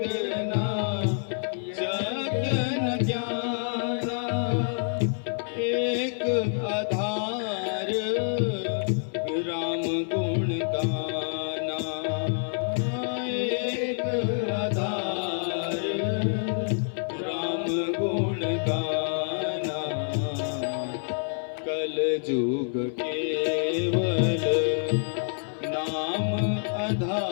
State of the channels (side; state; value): right; silent; digital silence